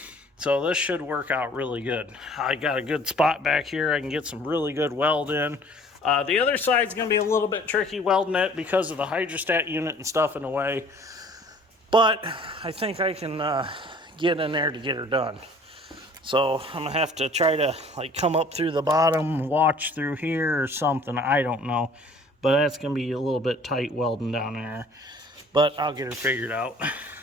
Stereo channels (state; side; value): normal; both; correlation 0.52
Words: So this should work out really good. I got a good spot back here. I can get some really good weld in. The other side's going to be a little bit tricky welding it because of the hydrostat unit and stuff in the way. But I think I can get in there to get her done. So I'm going to have to try to like come up through the bottom, watch through here or something. I don't know. But that's going to be a little bit tight welding down there. But I'll get her figured out.